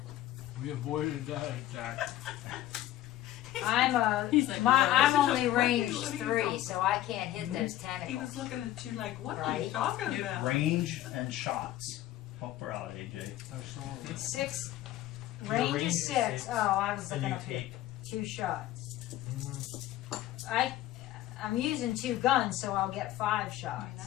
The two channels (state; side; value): quieter; right; 14.1 dB